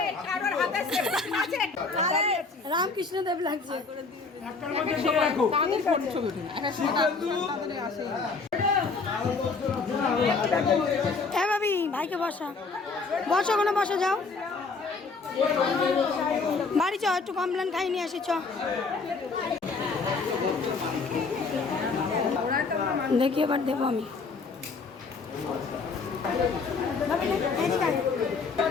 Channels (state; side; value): quieter; right; 4.4 dB